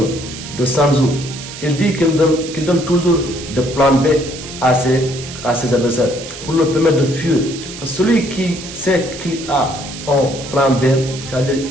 de Sun Tzu, il dit qu'il donne toujours de plan B à ses adversaires pour leur permettre de fuir. Parce que celui qui sait qu'il a un plan B, c'est-à-dire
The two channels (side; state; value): right; noise; hiss, 12 dB below the sound